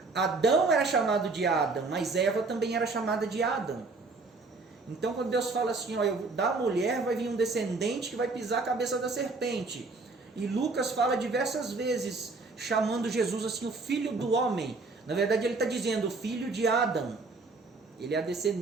Adão era chamado de Adam, mas Eva também era chamada de Adam. Então quando Deus fala assim, ó, da mulher vai vir um descendente que vai pisar a cabeça da serpente. E Lucas fala diversas vezes, chamando Jesus assim, o filho do homem. Na verdade ele está dizendo, o filho de Adão. Ele é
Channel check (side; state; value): left; quieter; 3.8 dB